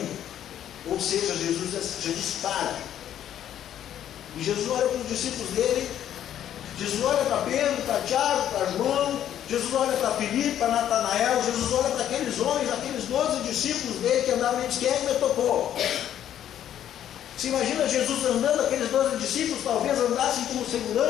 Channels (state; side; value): quieter; right; 10.8 dB